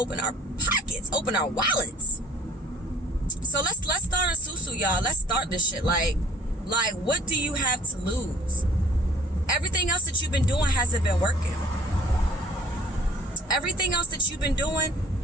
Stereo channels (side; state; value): both; normal; correlation 0.53